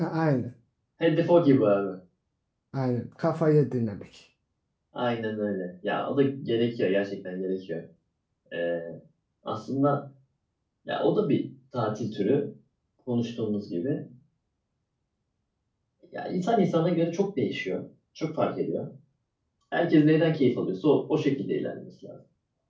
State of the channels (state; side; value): identical; both; correlation 1.00